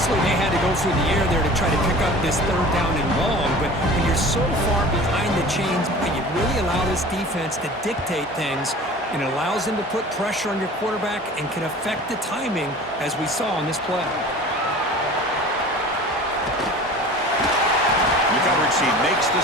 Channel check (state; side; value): normal; both; correlation 0.41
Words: they had to go through the air there to try to pick up this 3rd down and long, but when you're so far behind the chains, you really allow this defense to dictate things, and it allows them to put pressure on your quarterback and can affect the timing, as we saw on this play. She makes the